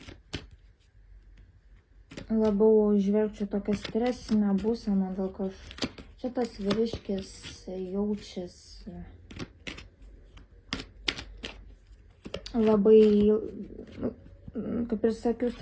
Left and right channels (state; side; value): identical; both; correlation 1.00